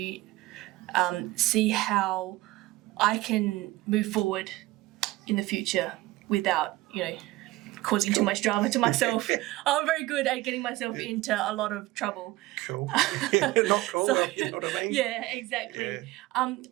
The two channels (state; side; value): quieter; left; 18.4 dB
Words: see how I can move forward in the future without, causing too much drama to myself. I'm very good at getting myself into a lot of trouble. Cool. Not cool, So- you know what I mean? Yeah, exactly.